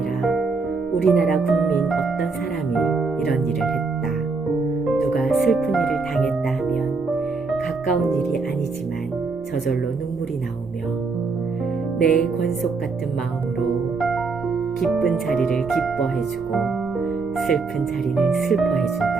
우리나라 국민 어떤 사람이 이런 일을 했다. 누가 슬픈 일을 당했다 하면 가까운 일이 아니지만 저절로 눈물이 나오며 내 권속 같은 마음으로 기쁜 자리를 기뻐해주고 슬픈 자리는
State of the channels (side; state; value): left; quieter; 4.3 dB